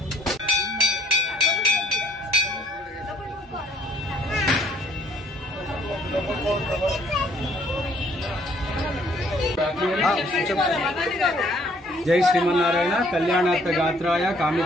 जय श्रीमन्नारायण कल्याणार्थ गात्राय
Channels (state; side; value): normal; both; correlation 0.62